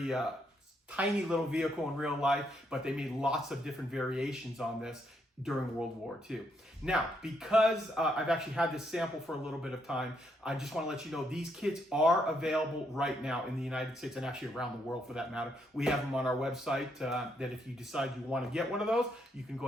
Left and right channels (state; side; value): normal; both; correlation 0.76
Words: tiny little vehicle in real life, but they made lots of different variations on this during World War II. Now, because I've actually had this sample for a little bit of time, I just want to let you know these kits are available right now in the United States and actually around the world for that matter. We have them on our website that if you decide you want to get one of those, you can